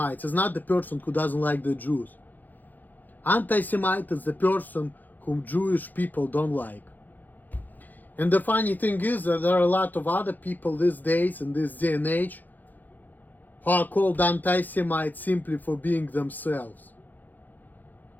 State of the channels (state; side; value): late; right; 0.085 ms